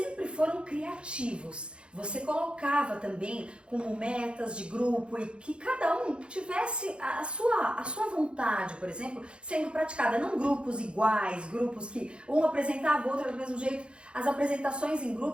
foram criativos. Você colocava também como metas de grupo e que cada um tivesse a sua vontade, por exemplo, sendo praticada. Não grupos iguais, grupos que um apresentava o outro do mesmo jeito. As apresentações em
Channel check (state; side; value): late; left; 0.056 ms